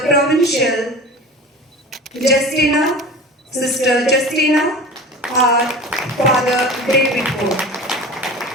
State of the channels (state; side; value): normal; both; correlation 0.35